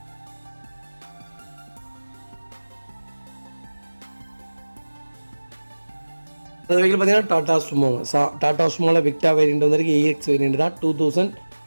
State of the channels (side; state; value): both; inverted; correlation -1.00